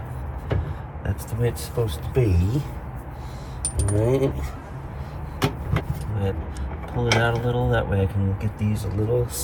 that's the way it's supposed to be. Alright. pull it out a little. That way I can get these a little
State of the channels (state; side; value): identical; both; correlation 1.00